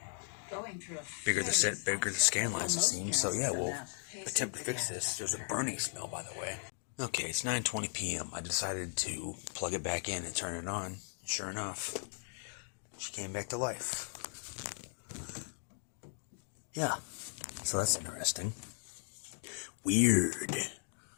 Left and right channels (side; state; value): right; silent; 53 dB below the other